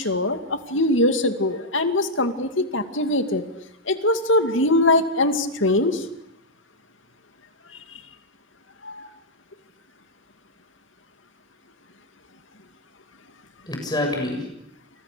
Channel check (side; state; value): both; normal; correlation -0.06